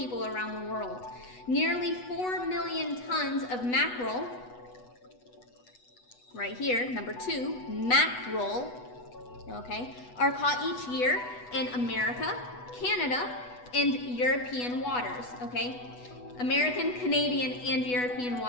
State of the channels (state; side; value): late; right; 8.1 ms